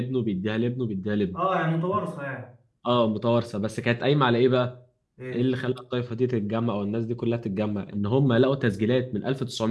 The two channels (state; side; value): identical; both; correlation 1.00